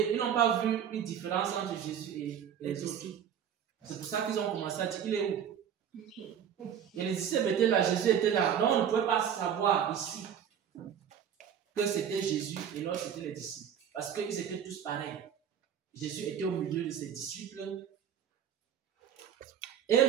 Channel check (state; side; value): quieter; left; 8.7 dB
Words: ils n'ont pas vu une différence entre Jésus et les autres. C'est pour ça qu'ils ont commencé à dire, il est où? Et les disciples étaient là, Jésus était là. Donc on ne pouvait pas savoir ici que c'était Jésus et l'autre c'était les disciples. Parce qu'ils étaient tous pareils. Jésus était au milieu de ses disciples. Et